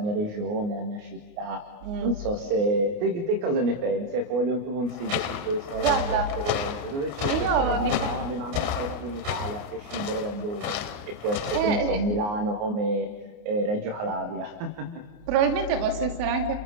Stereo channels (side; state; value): left; late; 29 ms